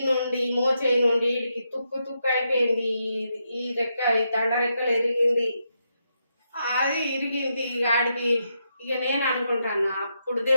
నుండి మోచేయి నుండి వీడికి తుక్కు అయిపోయింది. ఈ రెక్క ఈ దండ రెక్కలు ఎరిగింది, అది ఇరిగింది. ఆడికి ఇక నేను అనుకుంటాను అప్పుడు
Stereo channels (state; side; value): inverted; both; correlation -0.82